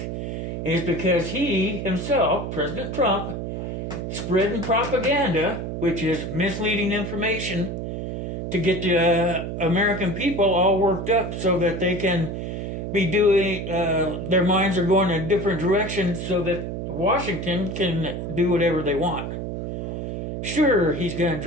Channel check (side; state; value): right; noise; hum, 5 dB below the sound